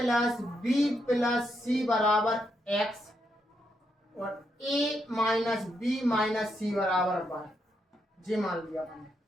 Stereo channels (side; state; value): both; normal; correlation 0.80